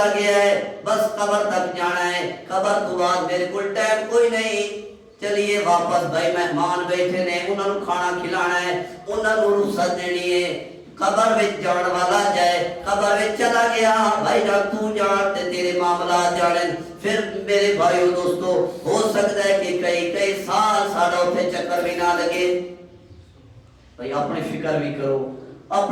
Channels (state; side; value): identical; both; correlation 1.00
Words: گیا ہے بس قبر تک جانا ہے. قبر تو بعد میرے کل ٹائم کوئی نہیں چلیے واپس بھائی مہمان بیٹھے نے انہوں نے کھانا کھلانا ہے انہوں نے رخصت دینی ہے. قبر وچ جان والا جائے قبر وچ چلا گیا بھائی جان تو جان تے تیرے معاملات جانن. پھر میرے بھائیو دوستو ہو سکتا ہے کہ کئی سال ساڑھا اتھے چکر بھی نہ لگے. بھائی اپنی فکر بھی کرو